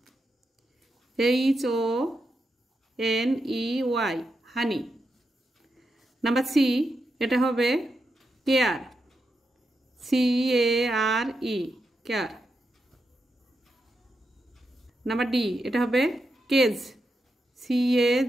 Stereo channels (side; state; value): both; normal; correlation 0.86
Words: HONEY honey. Number C এটা হবে care, CARE care. Number D এটা হবে cage,